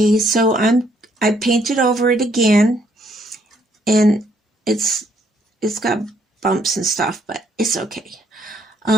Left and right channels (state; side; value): normal; both; correlation 0.69